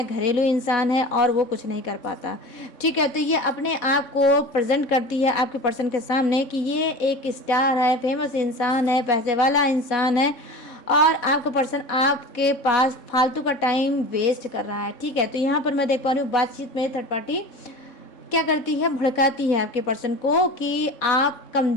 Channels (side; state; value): right; late; 3.6 ms